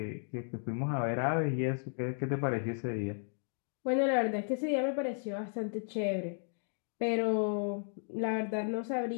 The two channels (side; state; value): right; silent; 55 dB below the other